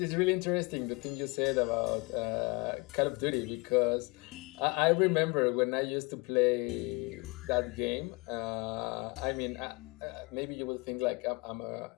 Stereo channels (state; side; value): quieter; right; 28.1 dB